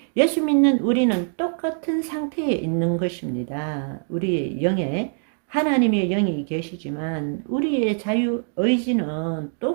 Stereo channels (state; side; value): silent; left; digital silence